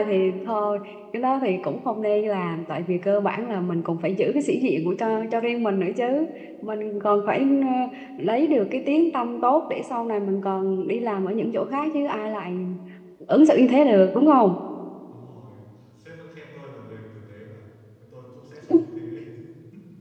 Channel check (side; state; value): both; identical; correlation 1.00